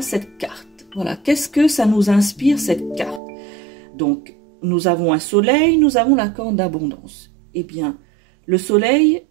cette carte? Voilà, qu'est-ce que ça nous inspire cette carte? Donc, nous avons un soleil, nous avons la corne d'abondance. Eh bien, le soleil,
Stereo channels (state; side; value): drops out; left; at 3.2 s